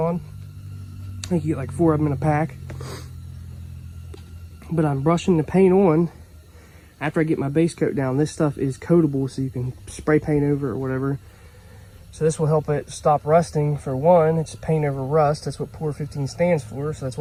I think you get like 4 of them in a pack. But I'm brushing the paint on after I get my base coat down. This stuff is coatable, so you can spray paint over it or whatever. So this will help it stop rusting. For one, it's paint over rust. That's what Pour 15 stands for, so that's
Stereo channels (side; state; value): both; identical; correlation 1.00